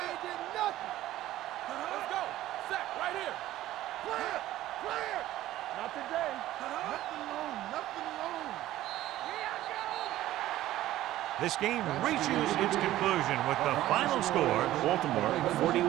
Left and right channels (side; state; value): left; quieter; 14.6 dB